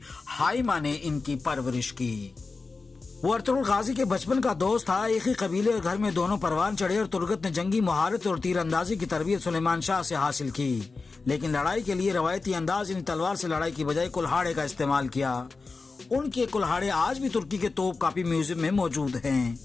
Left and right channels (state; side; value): quieter; right; 4.1 dB